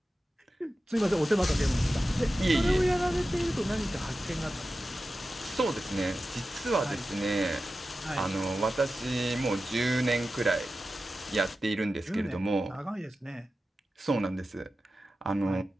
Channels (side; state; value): both; normal; correlation 0.93